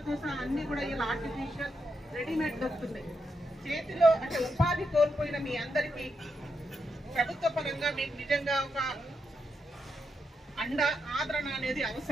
సహా అన్ని కూడా ఇలా ఆర్టిఫిషియల్ రెడీమేడ్ దొరుకుతున్నాయి. చేతిలో అంటే ఉపాధి కోల్పోయిన మీ అందరికీ ప్రభుత్వ పరంగా మీకు నిజంగా ఒక ఆదరణ అనేది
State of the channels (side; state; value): both; normal; correlation 0.83